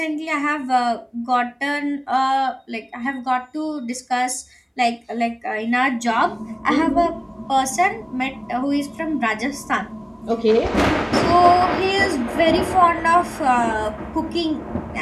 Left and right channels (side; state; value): both; identical; correlation 1.00